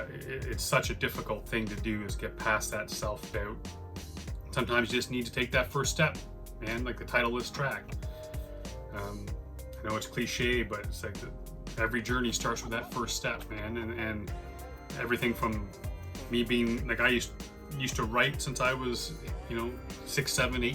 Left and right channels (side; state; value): both; identical; correlation 1.00